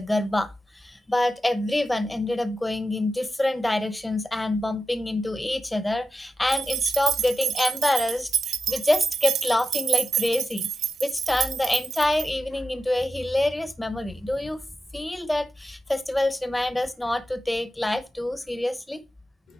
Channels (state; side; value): normal; both; correlation 0.89